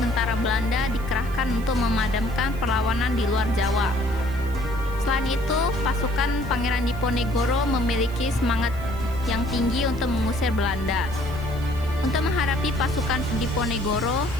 Belanda dikerahkan untuk memadamkan perlawanan di luar Jawa. Selain itu, pasukan Pangeran Diponegoro memiliki semangat yang tinggi untuk mengusir Belanda. Untuk menghadapi pasukan Diponegoro,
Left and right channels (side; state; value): right; noise; hiss, 22 dB below the sound